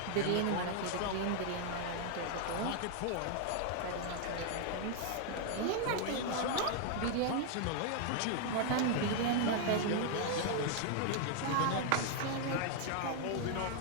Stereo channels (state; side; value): different; both; correlation 0.00